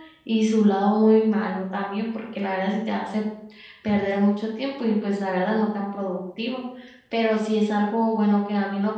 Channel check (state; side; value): identical; both; correlation 1.00